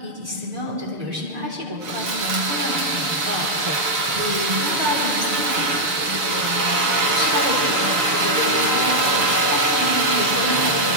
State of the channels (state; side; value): late; left; 6.7 ms